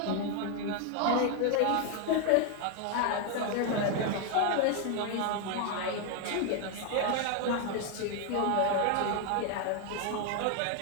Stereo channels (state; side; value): different; both; correlation 0.01